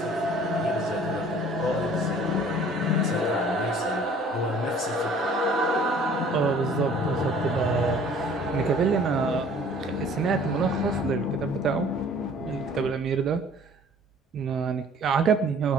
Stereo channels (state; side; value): normal; both; correlation 0.53